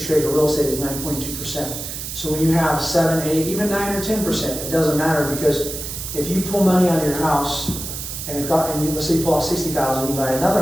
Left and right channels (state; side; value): noise; right; hiss, 7 dB below the sound